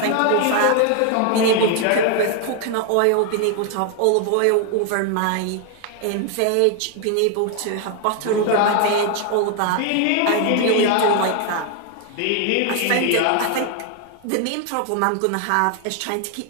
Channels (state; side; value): different; both; correlation 0.01